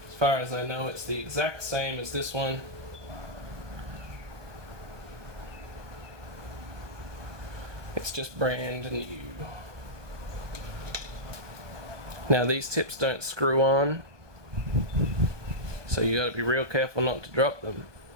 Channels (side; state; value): left; late; 1.2 ms